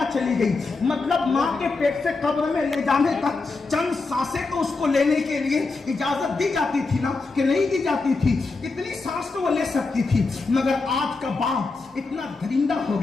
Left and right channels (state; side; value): quieter; right; 3.9 dB